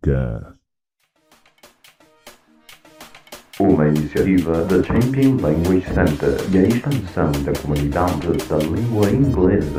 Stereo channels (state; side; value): identical; both; correlation 1.00